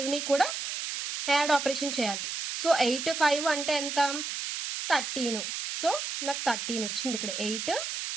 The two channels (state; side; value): noise; right; hiss, 4 dB below the sound